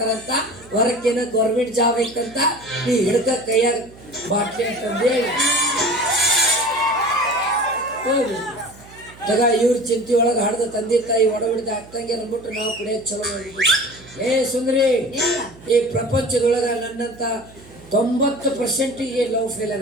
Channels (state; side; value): noise; right; hum, 22 dB below the sound